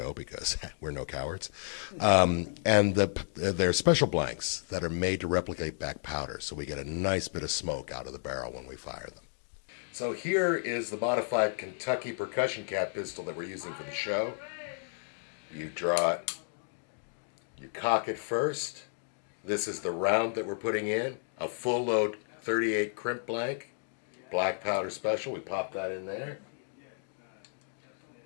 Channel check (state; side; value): silent; right; digital silence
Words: because we're no cowards. And they're special blanks that are made to replicate back powder, so we get a nice bit of smoke out of the barrel when we fire them. So here is the modified Kentucky percussion cap pistol that we're using for the show. You draw it, you cock it first. This is the round that we're putting in, a full load 38 crimp blank, black powder special. We pop that in there.